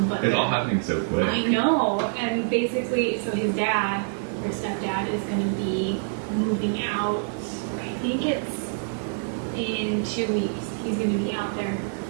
But it's all happening so quick. I know, and basically, so his dad, or stepdad, is going to be moving out, I think it's in 2 weeks. He's going to be out there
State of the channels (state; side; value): silent; left; 61 dB below the other